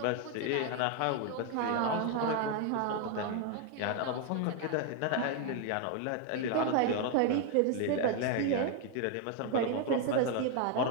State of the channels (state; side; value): different; both; correlation 0.01